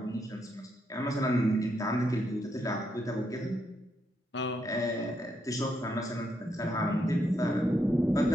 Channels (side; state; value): both; normal; correlation 0.79